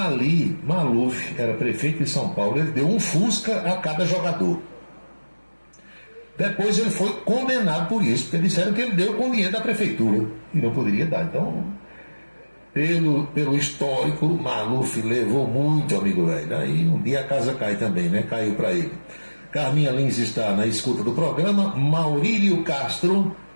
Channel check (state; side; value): inverted; both; correlation -1.00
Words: Maluf era prefeito de São Paulo, ele deu um Fusca a cada jogador. Depois ele foi condenado por isso, porque disseram que ele deu com dinheiro da prefeitura e não poderia dar. Então, pelo histórico, Maluf levou muito, amigo velho. Aí um dia a casa cai também, né? Caiu para ele. Carminha Lins está na escuta do programa. Maurílio Castro